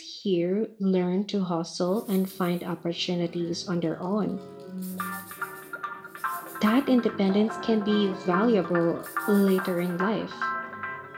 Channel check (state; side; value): identical; both; correlation 1.00